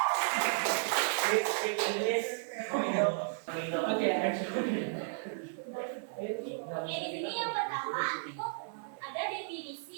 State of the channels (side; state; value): left; silent; 55 dB below the other